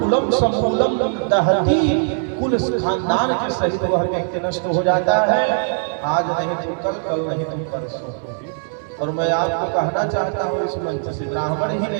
कुलम समूलम दहती, कुल खानदान के सहित वह व्यक्ति नष्ट हो जाता है। आज नहीं तो कल, कल नहीं तो परसों। और मैं आपको कहना चाहता हूँ इस मंच से, ब्राह्मण ही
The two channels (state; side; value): silent; left; 66 dB below the other